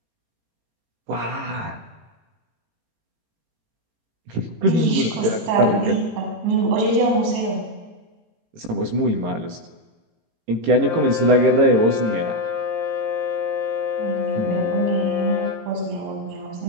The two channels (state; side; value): late; left; 18 ms